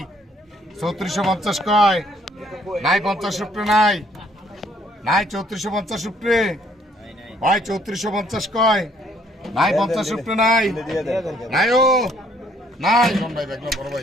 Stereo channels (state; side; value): normal; both; correlation 0.65